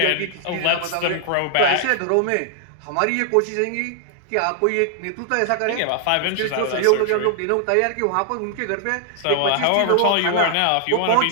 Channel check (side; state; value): both; different; correlation 0.00